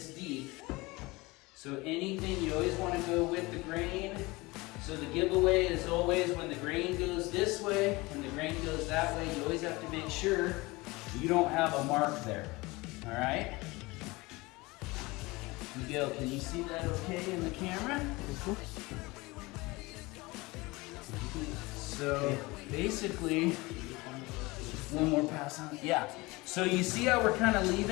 deep. So anything, you always want to go with the grain. So the giveaway is always when the grain goes this way and the grain goes that way, you always have to make sure you don't have a mark there. All right? Miguel, can you see that okay in the camera? So basically, one more pass on. Yeah. So you see how we're kind of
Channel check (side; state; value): right; quieter; 22.7 dB